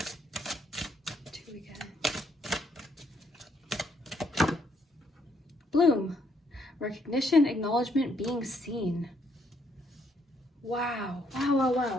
Bloom, recognition, acknowledgement, being seen. Wow, wow, wow,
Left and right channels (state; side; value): normal; both; correlation 0.72